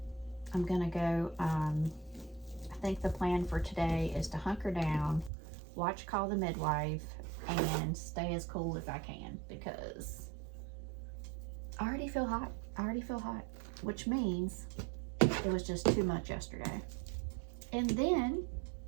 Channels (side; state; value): left; drops out; at 5.3 s